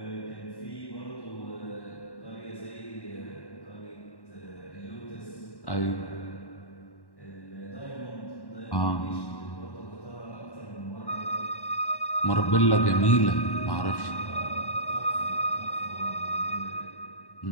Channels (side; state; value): right; late; 1.1 ms